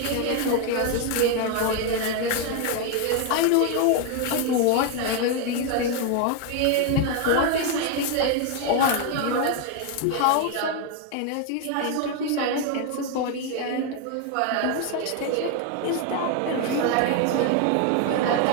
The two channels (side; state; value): both; different; correlation 0.01